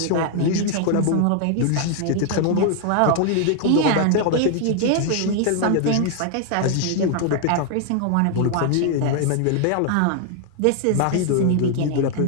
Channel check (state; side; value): different; both; correlation 0.00